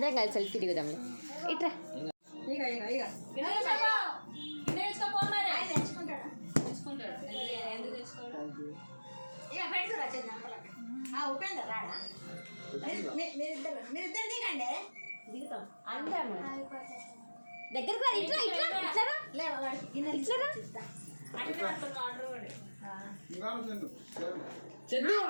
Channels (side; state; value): both; inverted; correlation -1.00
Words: కలిసి సెల్ఫీ దిగుదాం. ఇట్రా ఉపేందర్ రాడా? మీరిద్దరు దిగండి, దిగుతాం అందరం. దగ్గరకు రా. ఇట్లా